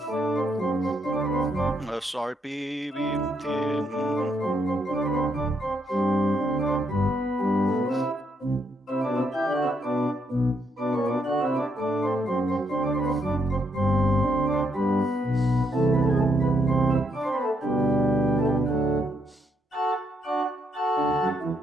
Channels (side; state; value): both; normal; correlation 0.76